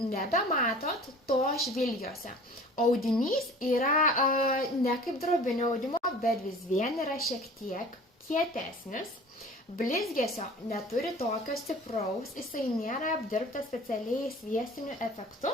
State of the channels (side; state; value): both; normal; correlation 0.44